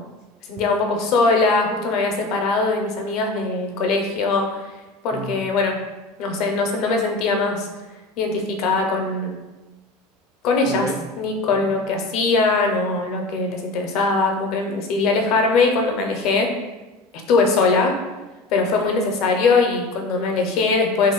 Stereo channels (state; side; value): quieter; right; 3.2 dB